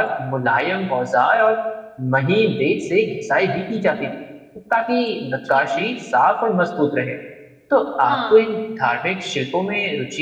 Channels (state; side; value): identical; both; correlation 1.00